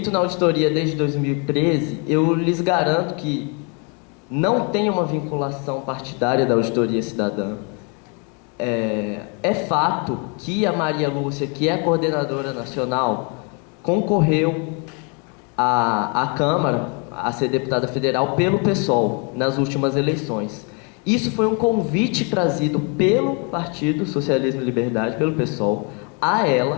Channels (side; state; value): right; quieter; 35.6 dB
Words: na auditoria desde 2013, eu lhes garanto que não tem uma vinculação partidária da auditoria cidadã. É fato que a Maria Lúcia, que é a coordenadora nacional, concorreu à Câmara, a ser deputada federal, pelo PSOL, nas últimas eleições. Isso foi um convite trazido pelo Partido Socialismo e Liberdade, pelo PSOL, a